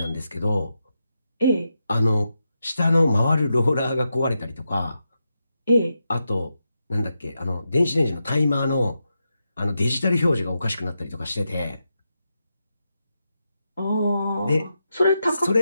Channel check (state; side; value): inverted; both; correlation -0.86